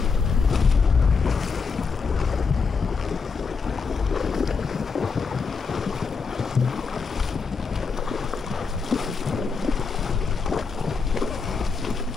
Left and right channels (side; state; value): right; quieter; 5.1 dB